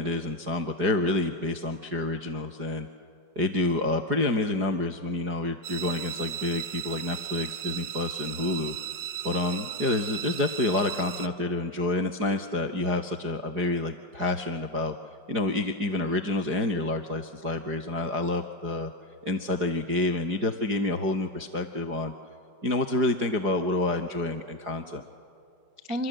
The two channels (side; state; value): left; late; 4.9 ms